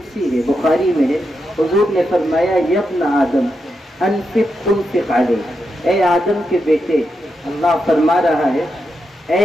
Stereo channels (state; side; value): normal; both; correlation 0.85